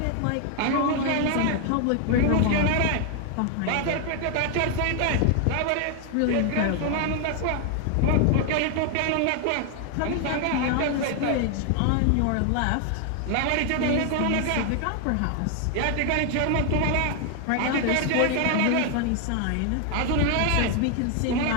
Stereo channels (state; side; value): different; both; correlation 0.00